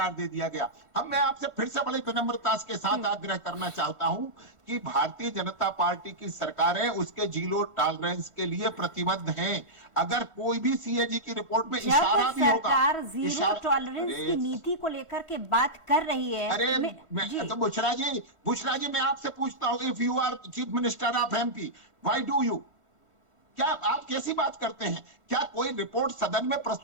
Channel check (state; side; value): late; left; 1.5 ms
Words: दे दिया गया। मैं आपसे फिर से बड़ी विनम्रता के साथ आग्रह करना चाहता हूं कि भारतीय जनता पार्टी की सरकारें उसके जीरो टॉलरेंस के लिए प्रतिबद्ध हैं। अगर कोई भी सीएजी की रिपोर्ट में इशारा भी होगा, सरकार जीरो टॉलरेंस की नीति को लेकर के बात कर रही है। अरे तो बुशरा जी मैं आपसे पूछता हूं, if you are chief minister of MP, why do you, क्या आप कैसी बात करते हैं? क्या कोई रिपोर्ट सदन में